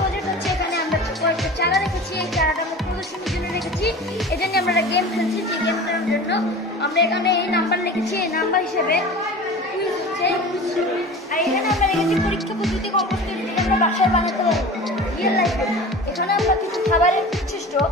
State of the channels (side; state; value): both; normal; correlation 0.36